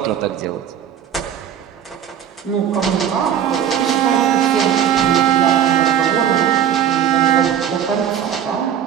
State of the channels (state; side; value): quieter; left; 9.3 dB